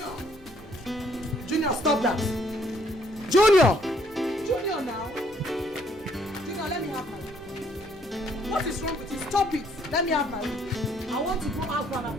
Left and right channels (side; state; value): both; normal; correlation 0.65